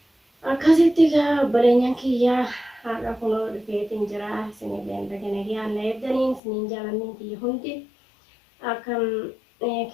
akkasitti obboleenyaan kiyyaa har'a kunoo dhufeetiin jira isinillee dhagana yaanna eeddaniin isiniin jaalanniin kiyya hundi akkam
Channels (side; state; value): right; drops out; at 6.4 s